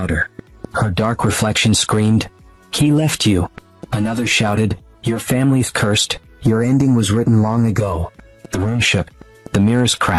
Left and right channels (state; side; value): identical; both; correlation 1.00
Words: Her dark reflection screamed, he left you. Another shouted, your family's cursed. Your ending was written long ago. The room shook. The mirrors